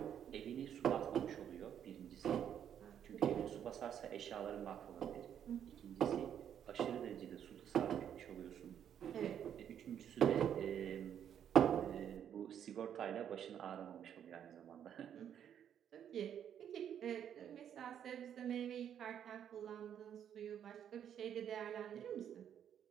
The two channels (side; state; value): left; quieter; 9.3 dB